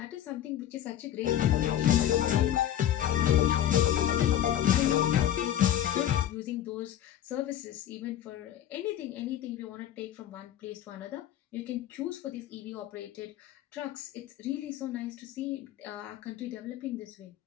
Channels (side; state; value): right; quieter; 11.3 dB